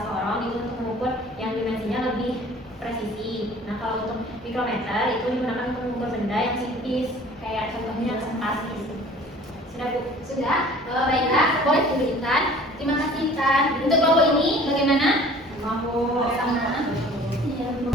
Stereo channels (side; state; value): both; normal; correlation 0.49